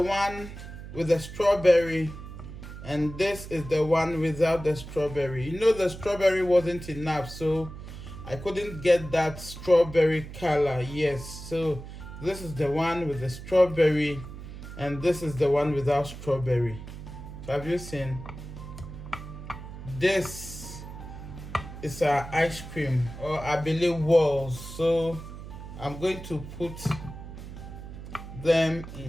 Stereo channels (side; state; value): right; noise; hum, 12 dB below the sound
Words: one with the strawberry and this is the one without the strawberry. You know, the strawberry wasn't enough, so I couldn't get that strawberry color. Yes, so this is the one with the strawberry and this is the one without strawberry. So have you seen? This is our ice cream, or Abele walls. So I'm going to put them